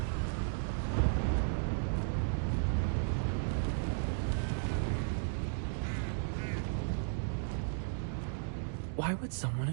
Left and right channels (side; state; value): left; silent; digital silence